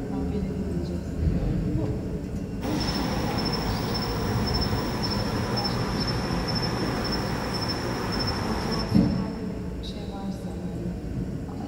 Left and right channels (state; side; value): identical; both; correlation 1.00